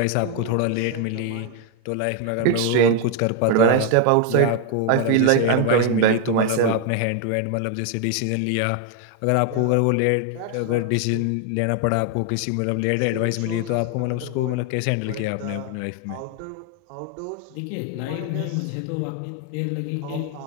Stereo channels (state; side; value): different; both; correlation 0.01